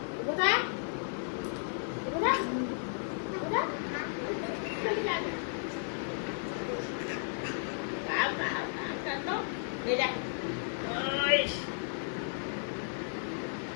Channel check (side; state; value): right; silent; digital silence